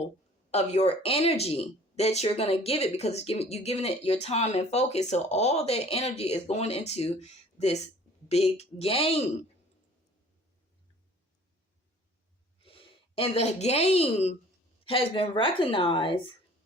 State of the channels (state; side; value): normal; both; correlation 0.50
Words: of your energy that you're going to give it, because you're giving it your time and focus. So all that energy is going into this big game. And the game has been recognized